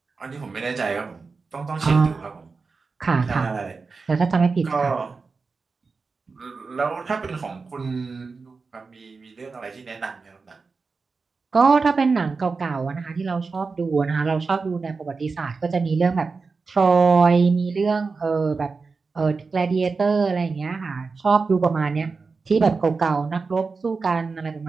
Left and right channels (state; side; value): quieter; left; 4.5 dB